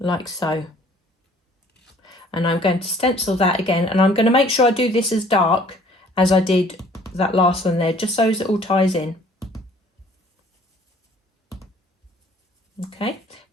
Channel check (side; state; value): both; normal; correlation 0.56